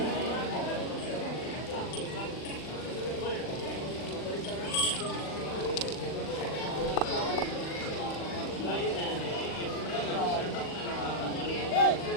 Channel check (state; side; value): late; right; 40 ms